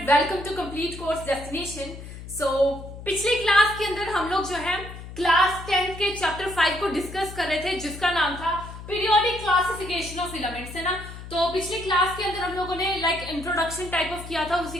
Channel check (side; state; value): left; noise; hum, 12 dB below the sound